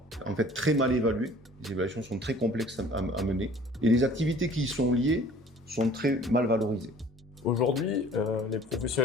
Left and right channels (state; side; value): normal; both; correlation 0.50